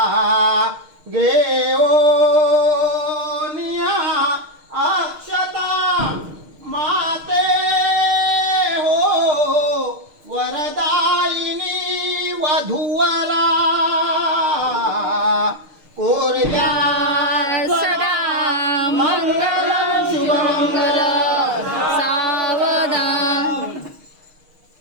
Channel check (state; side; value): late; left; 6.5 ms